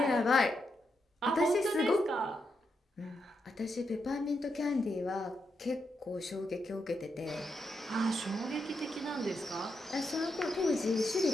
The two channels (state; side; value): normal; both; correlation 0.83